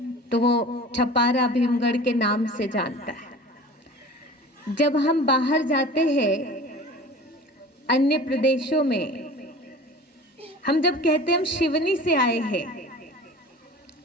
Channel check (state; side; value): normal; both; correlation 0.40